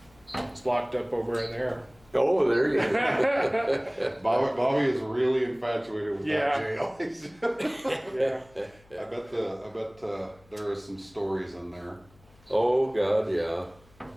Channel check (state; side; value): noise; left; hum, 28 dB below the sound